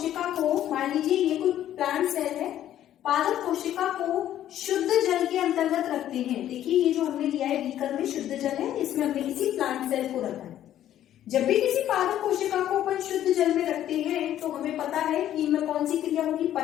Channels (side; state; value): right; quieter; 11.8 dB